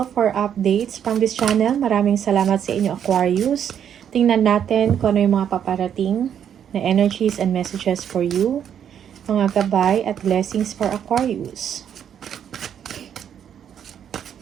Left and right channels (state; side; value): quieter; left; 8.9 dB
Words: for updates from this channel. Maraming salamat sa inyo, Aquarius. Tingnan natin kung ano yung mga paparating na energies and messages for you. Mga gabay at blessings for Aquarius.